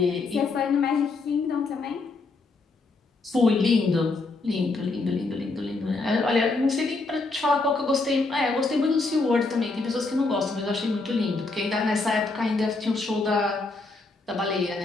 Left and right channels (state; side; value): quieter; right; 3.6 dB